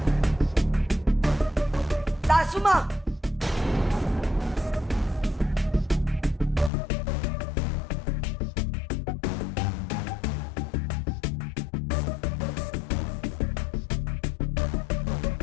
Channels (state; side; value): drops out; right; at 6.7 s